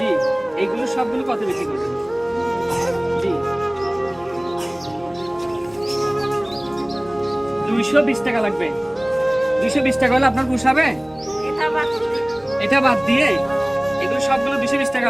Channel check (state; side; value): noise; right; hum, 29 dB below the sound